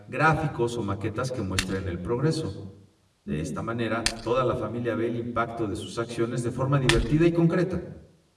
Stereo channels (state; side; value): identical; both; correlation 1.00